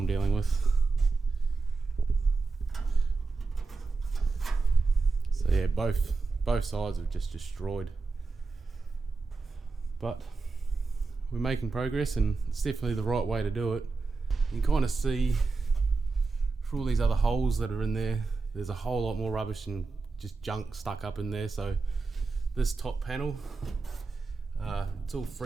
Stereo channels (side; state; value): left; quieter; 4.1 dB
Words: dealing with. So yeah, both sides are just destroyed. But we're making progress, and it's definitely the right way to do it. You can kind of see through all these other holes that are in there, there's a whole lot more rubbish and just junk stuck up in there. So this top panel, it's all